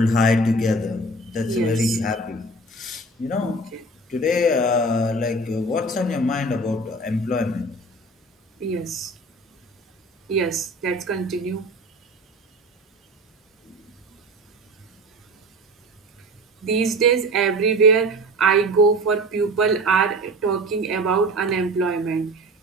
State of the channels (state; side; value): normal; both; correlation 0.37